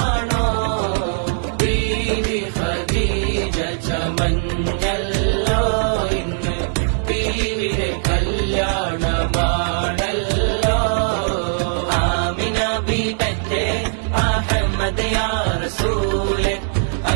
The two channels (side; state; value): left; silent; 66 dB below the other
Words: ബീവി ഖദീജ ചമഞ്ഞല്ലോ ഇന്ന് ബീവിയുടെ കല്യാണമാണല്ലോ. ആമിന ബീബത്തെ അഹമ്മദ് യാ റസൂലെ